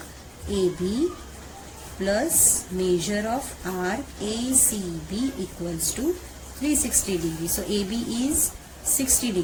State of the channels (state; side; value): identical; both; correlation 1.00